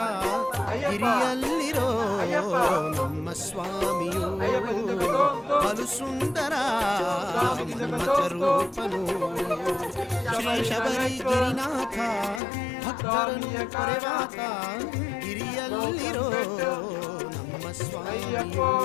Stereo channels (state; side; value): drops out; right; at 12.4 s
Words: ಗಿರಿಯಲ್ಲಿರೋ ನಮ್ಮ ಸ್ವಾಮಿಯು ಬಲು ಸುಂದರ ರೂಪನು. ಶ್ರೀ ಶಬರಿ ಗಿರಿನಾಥ ಭಕ್ತರನ್ನು ಕೊರೆವಾತ ಗಿರಿಯಲ್ಲಿರೋ ನಮ್ಮ ಸ್ವಾಮಿಯು